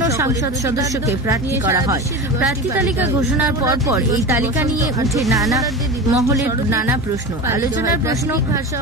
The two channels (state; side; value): normal; both; correlation 0.28